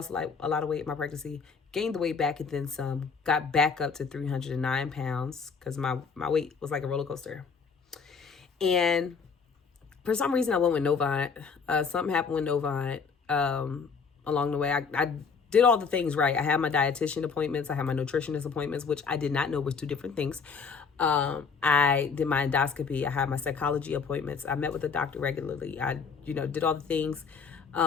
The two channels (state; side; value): quieter; right; 5.5 dB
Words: like a lot of weight in my pregnancy, gained the weight back and then some, got back up to 309 pounds because my weight was like a roller coaster. And for some reason I went with Novant. Something happened with Novant along the way. I did all the things right. I had my dietitian appointments. I had my nutritionist appointments, which I did not know was two different things. I did my endoscopy. I had my psychology appointments. I met with the doctor regularly. I, did all the things.